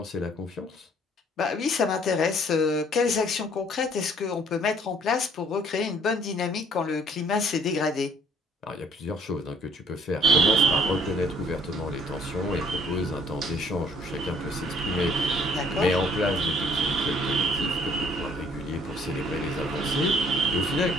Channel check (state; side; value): normal; both; correlation 0.59